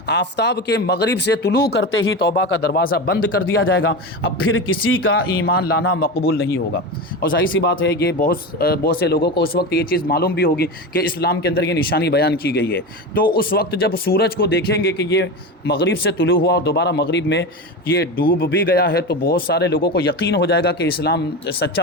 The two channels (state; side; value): normal; both; correlation 0.22